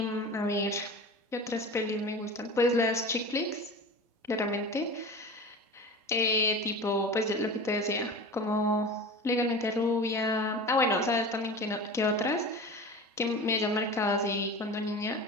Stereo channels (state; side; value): normal; both; correlation 0.33